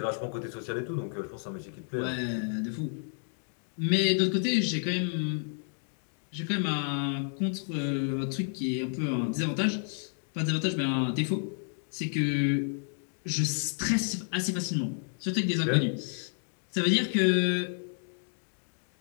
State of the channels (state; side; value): silent; right; 55 dB below the other